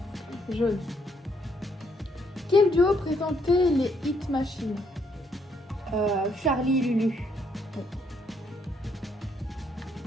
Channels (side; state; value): both; normal; correlation 0.72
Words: Jaune. Quel duo présentait les Hit Machines? Charlie et Lulu.